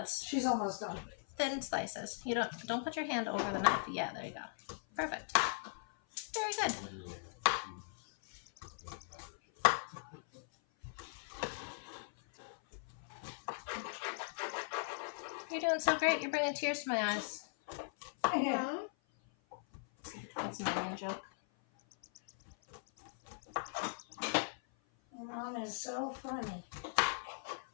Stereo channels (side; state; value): right; silent; 52 dB below the other